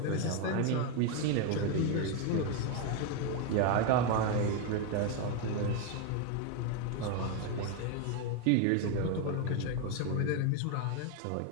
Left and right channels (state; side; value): different; both; correlation 0.01